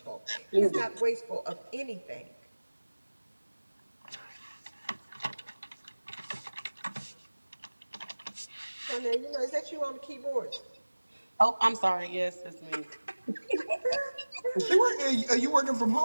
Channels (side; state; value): both; inverted; correlation -1.00